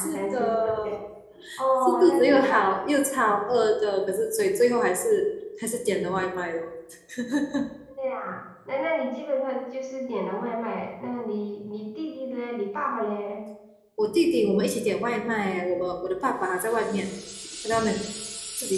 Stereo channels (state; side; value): identical; both; correlation 1.00